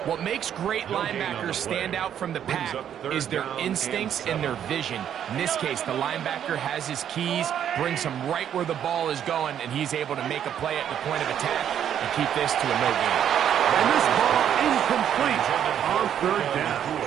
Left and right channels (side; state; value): left; quieter; 9.6 dB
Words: What makes great linebackers stand out from the pack is their instincts and their vision. In this case, the linebacker has his keys, brings him right where the ball is going, and he's able to make a play at the point of attack and keep this to a no gain. And this ball incomplete on 3rd down.